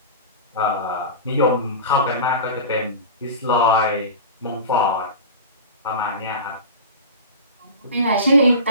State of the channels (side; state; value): both; inverted; correlation -0.30